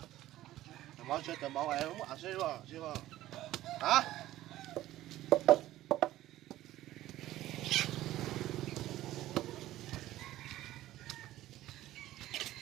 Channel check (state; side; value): quieter; left; 14.8 dB